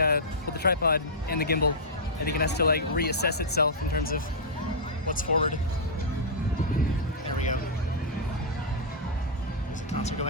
tripod and the gimbal, I think it has to like reassess itself in terms of what's forward. There we go. There's a concert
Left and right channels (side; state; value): both; normal; correlation -0.11